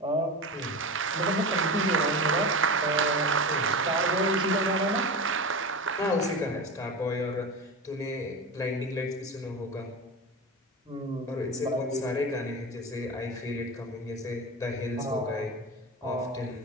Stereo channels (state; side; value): normal; both; correlation 0.26